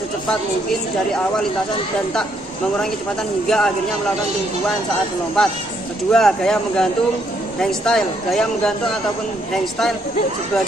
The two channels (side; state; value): both; normal; correlation 0.72